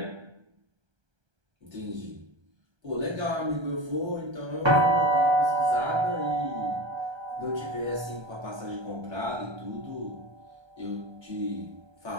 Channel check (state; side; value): late; left; 1.3 ms